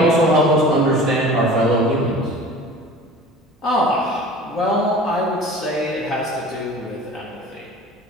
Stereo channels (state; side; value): normal; both; correlation 0.41